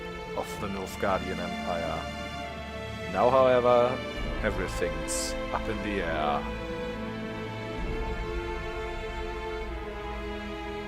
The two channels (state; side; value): identical; both; correlation 1.00